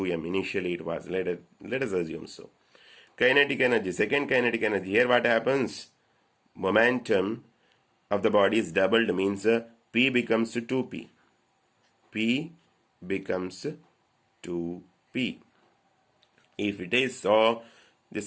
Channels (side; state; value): both; identical; correlation 1.00